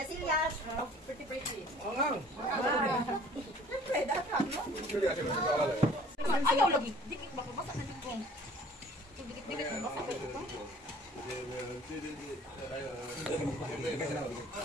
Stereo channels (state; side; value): normal; both; correlation 0.52